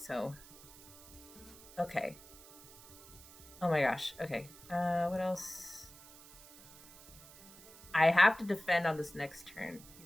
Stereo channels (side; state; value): right; noise; hiss, 20 dB below the sound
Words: so... Okay. Oh my gosh. Okay. What else? I have to defend on this next turn. You